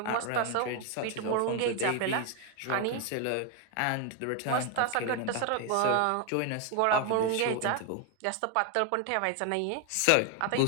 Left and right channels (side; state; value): both; different; correlation 0.01